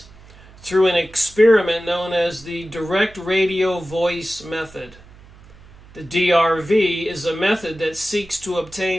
through an experiment known as the direct radio voice method. The DRV is a method that seeks to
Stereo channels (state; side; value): noise; right; hum, 23 dB below the sound